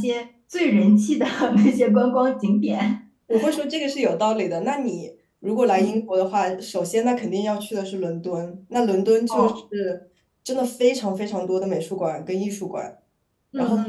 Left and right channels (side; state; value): both; identical; correlation 1.00